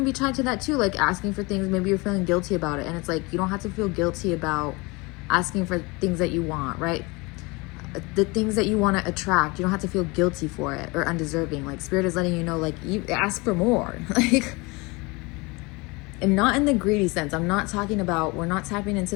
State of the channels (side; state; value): right; quieter; 25.8 dB